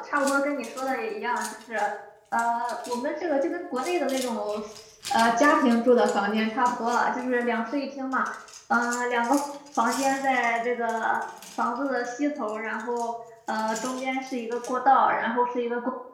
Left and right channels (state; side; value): identical; both; correlation 1.00